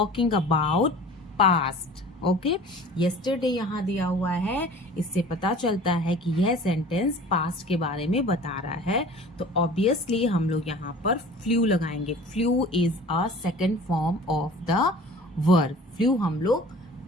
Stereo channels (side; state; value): both; normal; correlation 0.44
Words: about past. Okay yesterday यहाँ दिया हुआ है, इससे पता चलता है कि यह सेंटेंस पास्ट के बारे में बता रहा है. तो ऑब्वियसली हम लोग यहाँ पर फ्लू लगाएंगे. Flu is a second form of the verb. Flu हम लोग